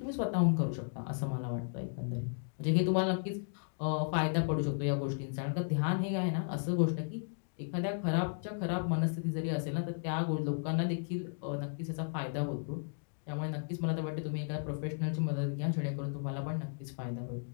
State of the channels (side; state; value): right; silent; digital silence